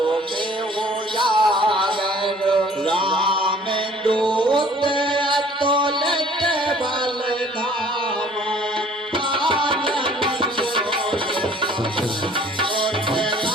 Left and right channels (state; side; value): normal; both; correlation 0.53